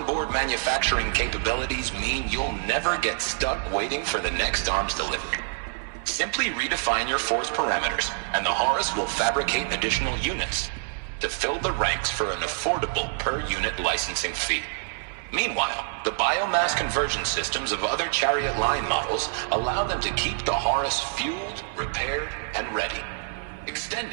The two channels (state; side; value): silent; left; 57 dB below the other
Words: manufacturing capabilities mean you'll never get stuck waiting for the next arms delivery. Simply redefine your force parameters, and the Horus will fabricate additional units to fill the ranks for an affordable per-unit licensing fee. Meanwhile, the biomass conversion systems of other Chariot line models allow them to keep the Horus fueled, repaired, and ready,